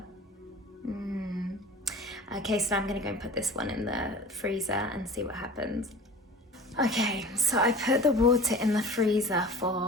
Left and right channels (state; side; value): normal; both; correlation 0.39